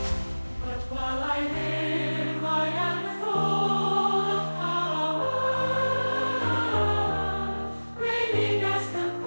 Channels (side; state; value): both; inverted; correlation -1.00